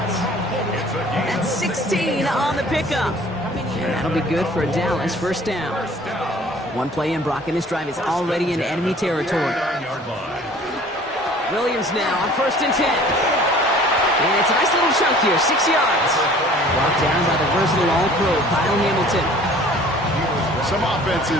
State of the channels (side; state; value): both; normal; correlation 0.50